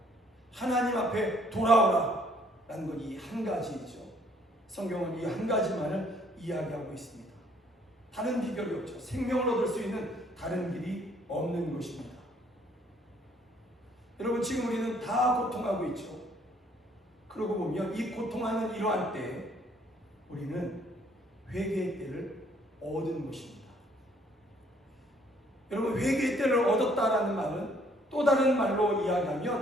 하나님 앞에 돌아오라 라는 건 이 한 가지이죠. 성경은 이 한 가지만을 이야기하고 있습니다. 다른 비결이 없죠. 생명을 얻을 수 있는 다른 길이 없는 것입니다. 여러분, 지금 우리는 다 고통하고 있죠. 그러고 보면 이 고통하는 이러한 때 우리는 회개의 때를 얻은 것입니다. 여러분, 회개의 때를 얻었다라는 말은 또 다른 말로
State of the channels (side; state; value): both; normal; correlation 0.63